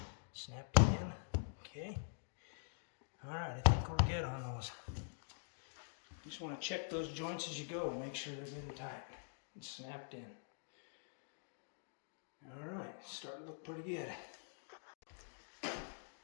snapped in. Okay. Alright, I think we're good on those. You just want to check those joints as you go. Make sure they're good and tight and snapped in. Alright, starting to look pretty good.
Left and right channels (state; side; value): silent; right; digital silence